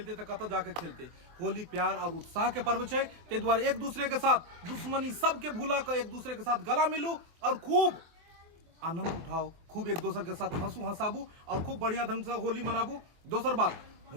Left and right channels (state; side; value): late; left; 24 ms